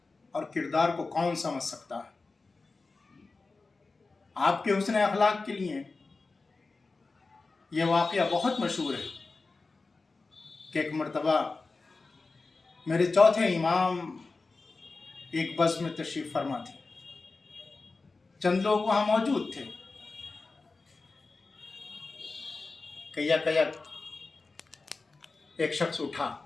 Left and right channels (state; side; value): quieter; right; 3.8 dB